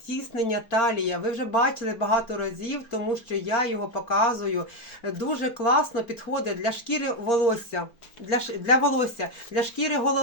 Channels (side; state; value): right; late; 4.3 ms